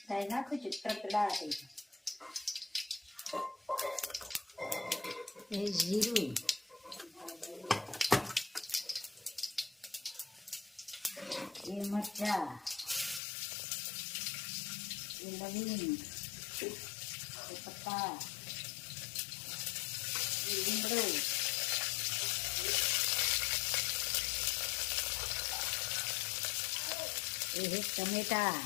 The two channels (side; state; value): right; drops out; at 13.2 s